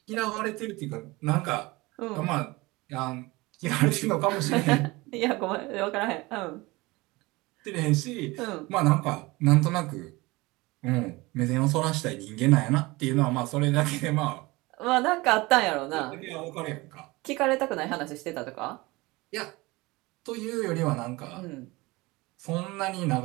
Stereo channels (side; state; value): left; quieter; 22.4 dB